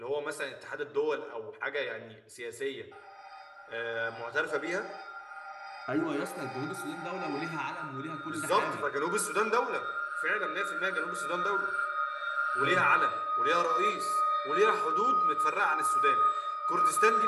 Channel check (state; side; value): identical; both; correlation 1.00